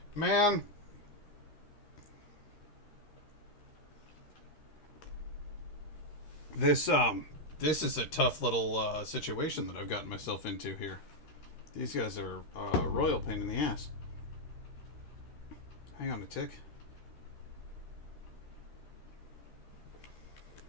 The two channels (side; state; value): right; late; 13 ms